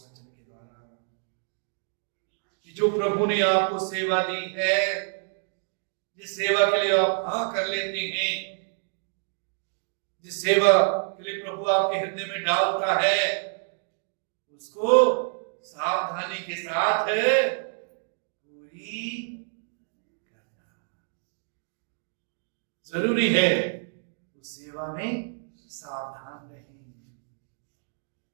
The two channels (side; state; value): left; silent; digital silence